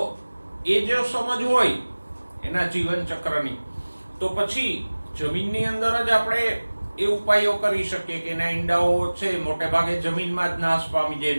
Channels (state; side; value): inverted; both; correlation -1.00